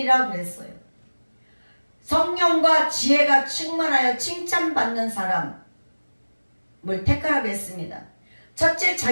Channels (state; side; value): inverted; both; correlation -1.00